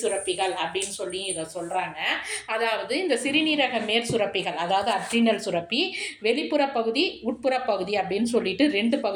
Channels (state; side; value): identical; both; correlation 1.00